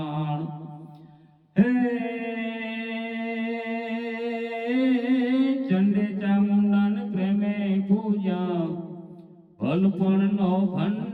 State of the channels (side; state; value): both; identical; correlation 1.00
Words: હે ચંડે ચામુંડન પ્રેમે પૂજા ભલપણનો